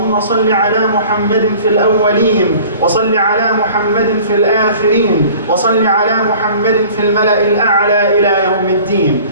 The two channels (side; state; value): both; inverted; correlation -0.47